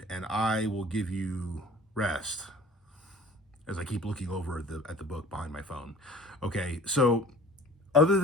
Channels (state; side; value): normal; both; correlation 0.47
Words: and I will give you rest. as I keep looking over at the book behind my phone. Okay, so other